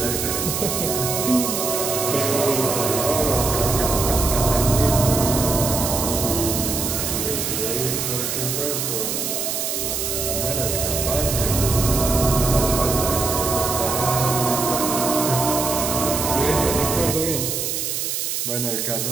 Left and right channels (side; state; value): right; noise; hiss, 2 dB below the sound